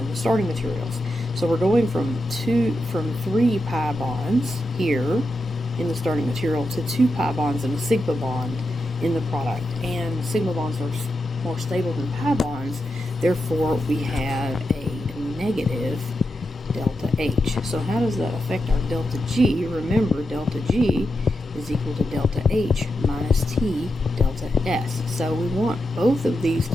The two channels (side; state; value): both; normal; correlation 0.87